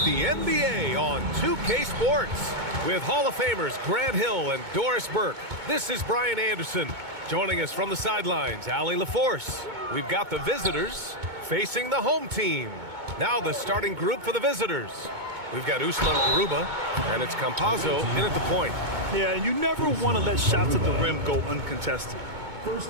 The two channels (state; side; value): late; left; 2.2 ms